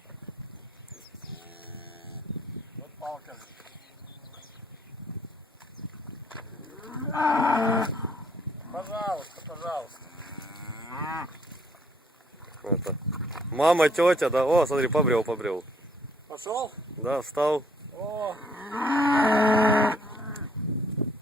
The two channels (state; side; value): normal; both; correlation 0.64